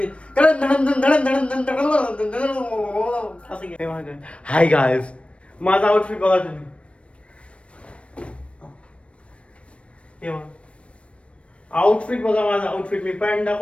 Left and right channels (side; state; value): right; late; 0.061 ms